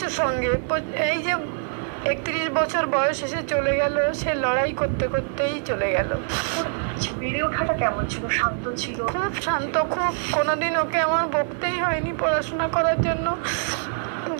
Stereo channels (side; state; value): left; silent; 62 dB below the other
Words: সঙ্গে। এই যে 31 বছর বয়স এসে চলে গেল, সে লড়াই করতে করতেই চলে গেল। বেড়ে ওঠাটা কেমন ছিল? শান্ত ছিল? খুব শান্ত, খুব। কোনোদিন ওকে আমার বকতেই হয়নি পড়াশোনা করার জন্য।